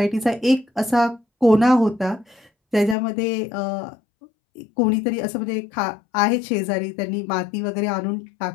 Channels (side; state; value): right; drops out; at 3.0 s